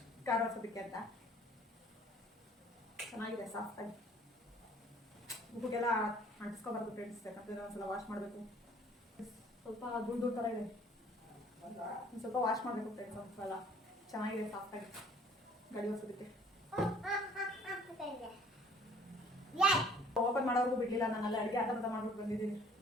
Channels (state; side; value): normal; both; correlation 0.56